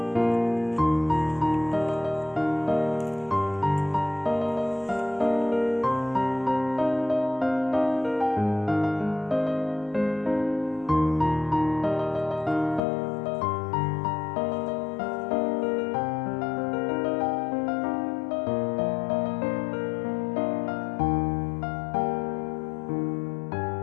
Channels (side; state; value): right; drops out; at 12.8 s